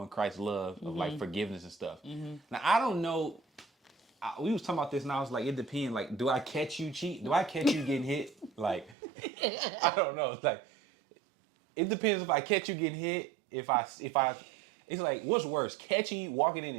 Christ's love, of like forgiveness and stuff. Mm-hmm. Now, I don't know. We was talking about this and I was like, it depends. Like, do I catch you cheat? Do I catch you getting hit? Like, I don't know. It's like, it depends if I catch you getting hit. If I, it's like, what's worse? Catching you, walking in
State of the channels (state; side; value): drops out; left; at 9.0 s